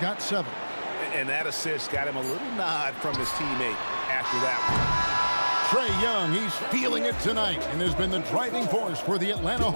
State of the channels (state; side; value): inverted; both; correlation -1.00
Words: 7. And that assist got him a little nod from his teammate after that one. Trae Young, he's feeling it tonight and has been the driving force for the Atlanta